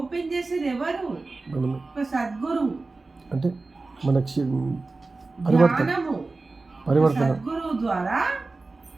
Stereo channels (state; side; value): quieter; left; 3.6 dB